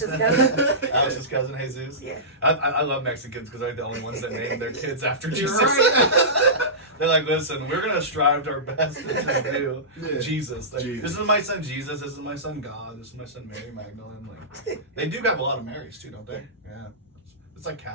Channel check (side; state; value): both; normal; correlation -0.19